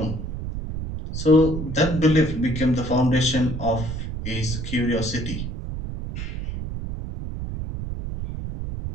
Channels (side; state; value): right; noise; rumble, 6 dB below the sound